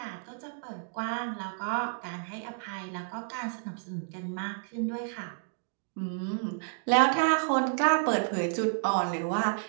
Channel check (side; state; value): left; silent; digital silence